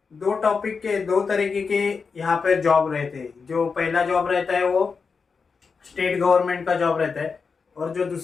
दो टॉपिक के दो तरीके के यहाँ पर जॉब रहते हैं। जो पहला जॉब रहता है वो स्टेट गवर्नमेंट का जॉब रहता है, और जो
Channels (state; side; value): quieter; right; 5.2 dB